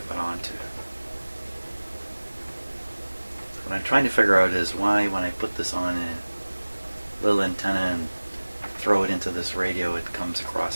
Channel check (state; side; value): inverted; both; correlation -1.00